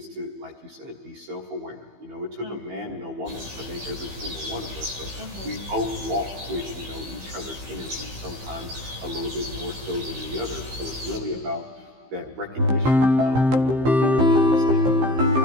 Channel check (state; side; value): late; left; 15 ms